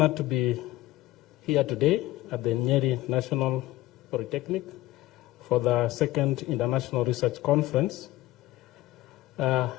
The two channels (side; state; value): right; quieter; 16.8 dB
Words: to be here today at the Nyeri National Polytechnic for the second International Research Conference,